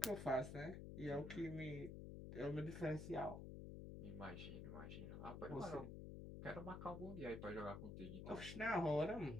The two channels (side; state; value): left; noise; hum, 7 dB below the sound